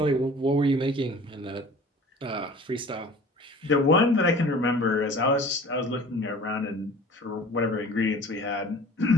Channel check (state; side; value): normal; both; correlation 0.45